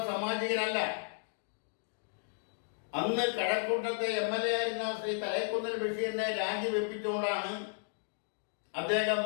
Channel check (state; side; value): silent; right; digital silence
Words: സാമാജികനല്ല. അന്ന് കഴക്കൂട്ടത്തെ MLA ആയിരുന്ന ശ്രീ തലൈക്കുന്നിൽ ബഷീറിനെ രാജിവെപ്പിച്ചുകൊണ്ടാണ് അദ്ദേഹം